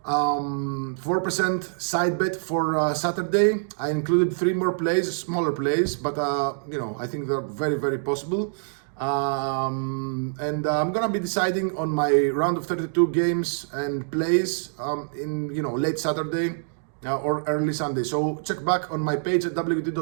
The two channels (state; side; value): silent; left; digital silence